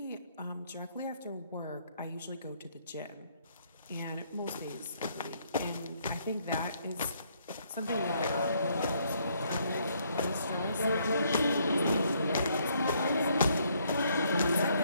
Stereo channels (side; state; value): both; inverted; correlation -0.69